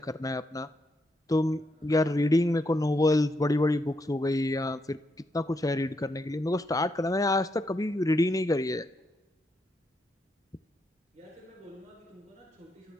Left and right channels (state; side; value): normal; both; correlation 0.79